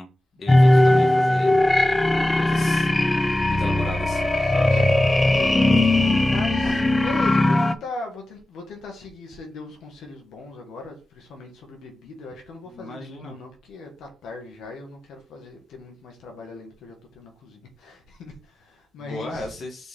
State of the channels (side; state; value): both; normal; correlation 0.96